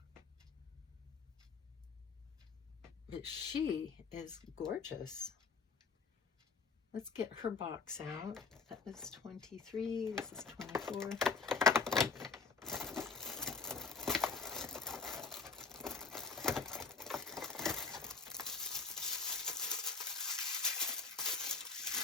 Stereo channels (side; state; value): right; quieter; 4.7 dB